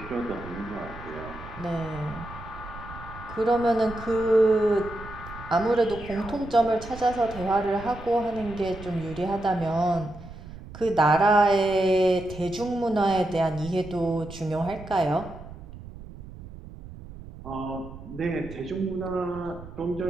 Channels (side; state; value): right; noise; rumble, 15 dB below the sound